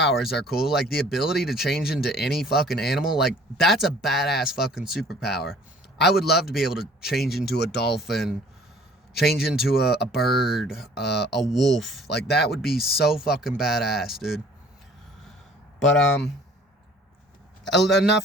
are cool, like the ability to change into any fucking animal. Like, that's a badass fucking superpower. I would love to be able to change into a dolphin, change into a bird, a wolf. Like, that would be so fucking badass, dude. But,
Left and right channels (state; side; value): normal; both; correlation 0.53